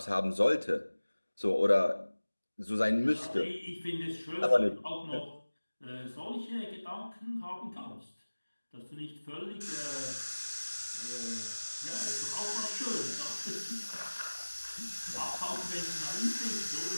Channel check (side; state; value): both; inverted; correlation -1.00